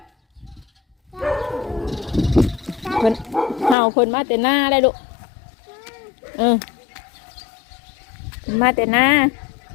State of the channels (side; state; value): right; drops out; at 3.8 s